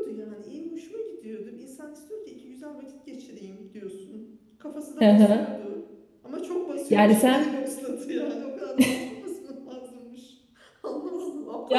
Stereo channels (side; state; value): both; identical; correlation 1.00